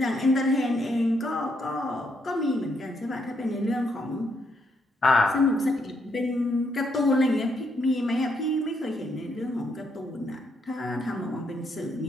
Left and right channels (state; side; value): normal; both; correlation 0.76